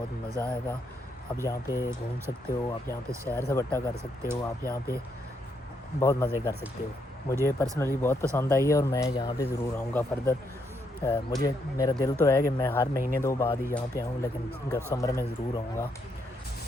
मज़ा आएगा। आप यहाँ पे घूम सकते हो, आप यहाँ पे सैर सपाटा कर सकते हो, आप यहाँ पे बहुत मज़े कर सकते हो। मुझे पर्सनली बहुत पसंद आई है और मैं यहाँ पे ज़रूर आऊँगा फर्दर। मुझे मेरा दिल तो है कि मैं हर महीने 2 बाद ही यहाँ पे आऊँ, लेकिन समर में ज़रूर आऊँगा।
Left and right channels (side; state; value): both; normal; correlation 0.76